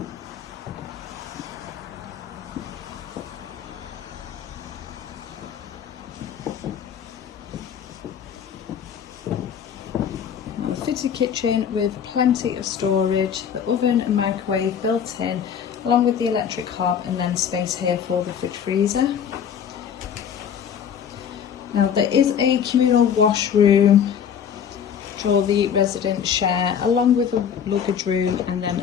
Fitted kitchen with plenty of storage, the oven and microwave built in, along with the electric hob, and then space here for the fridge freezer. Now there is a communal washroom which all the residents share, along with a luggage room and then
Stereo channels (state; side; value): quieter; right; 8.0 dB